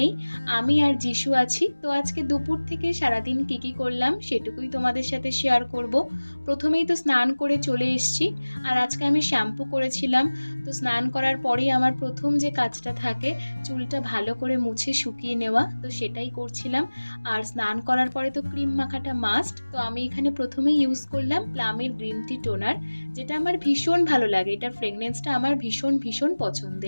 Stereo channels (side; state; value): both; inverted; correlation -1.00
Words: আমি আর যিশু আছি। তো আজকে দুপুর থেকে সারাদিন কী করলাম সেটুকুই তোমাদের সাথে শেয়ার করব। প্রথমেই তো স্নান করে চলে এসেছি, আর আজকে আমি শ্যাম্পু করেছিলাম। তো স্নান করার পরেই আমার প্রথম যে কাজটা থাকে চুলটা ভালো করে মুছে শুকিয়ে নেওয়া, তো সেটাই করছিলাম। আর স্নান করার পরে তো ক্রিম মাখাটা মাস্ট। তো আমি এখানে প্রথমেই ইউজ করলাম প্লামের গ্রিন টি টোনার, যেটা আমার ভীষণ ভালো লাগে। এটার ফ্রেগনেন্সটা আমার ভীষণ ভীষণ